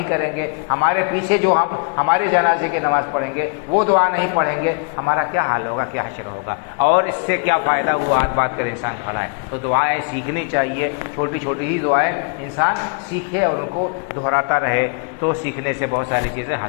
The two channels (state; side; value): quieter; right; 37.9 dB